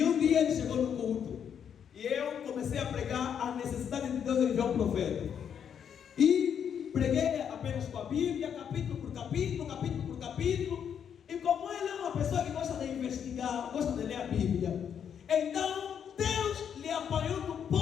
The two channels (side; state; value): right; quieter; 8.1 dB